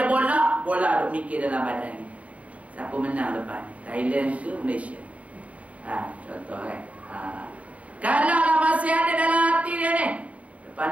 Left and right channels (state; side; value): late; left; 0.067 ms